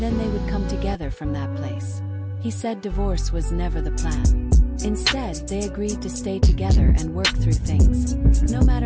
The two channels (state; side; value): identical; both; correlation 1.00